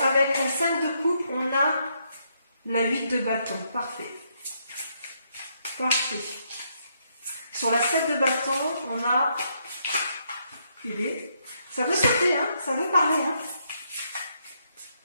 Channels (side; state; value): both; inverted; correlation -0.75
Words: avec la 5 de coupe, on a la 8 de bâton. Parfait. Parfait. Sur la 7 de bâton, on a... Ça veut sauter, hein, ça veut parler. Hein.